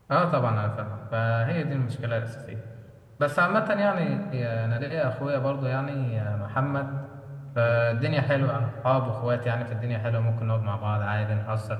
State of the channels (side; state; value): both; identical; correlation 1.00